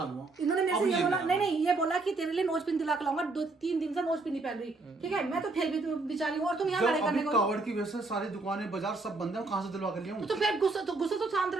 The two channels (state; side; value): quieter; left; 3.5 dB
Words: लूंगा। इन्होंने मेरे अब से ये बोला, नहीं नहीं ये बोला कि तेरे लिए नोज पिन दिला के लाऊंगा, 2-3 दिन से नोज पिन नहीं पहन रही, ठीक है। मैं तो फिर भी बेचारी हूँ, और तुम यहाँ जब लड़ाई करने अभी को। कावड़ की वजह से सारी दुकानें बाजार सब बंद है, कहाँ से दिलवा कर लिया हूँ? तो फिर गुस्सा तो शांत